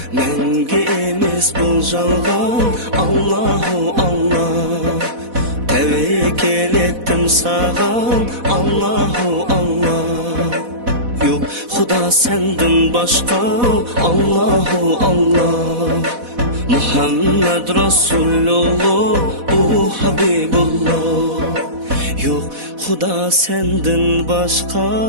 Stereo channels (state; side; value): late; left; 4.1 ms